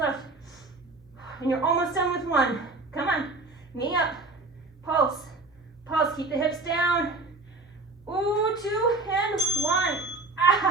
And you're almost done with one. Come on, knee up, pulse, pulse, keep the hips down. Ooh, 2 and 1.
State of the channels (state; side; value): quieter; left; 3.3 dB